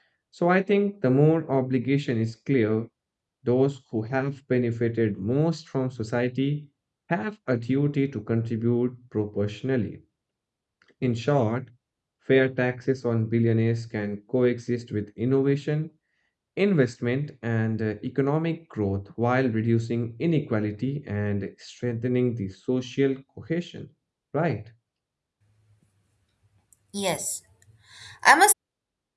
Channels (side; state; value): both; identical; correlation 1.00